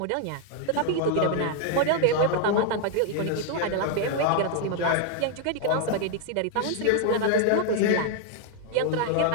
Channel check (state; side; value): different; both; correlation 0.00